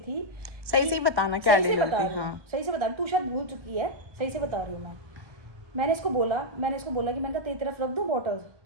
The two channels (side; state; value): left; late; 1.1 ms